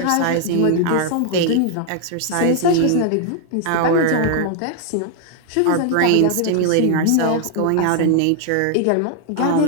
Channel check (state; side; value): different; both; correlation 0.00